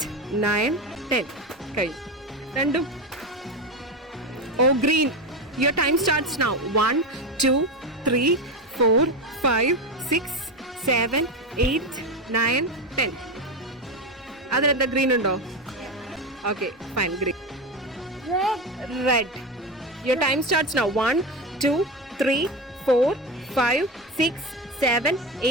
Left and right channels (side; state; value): both; normal; correlation 0.18